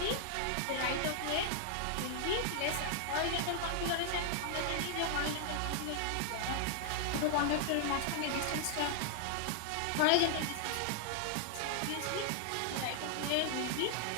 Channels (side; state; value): both; different; correlation -0.01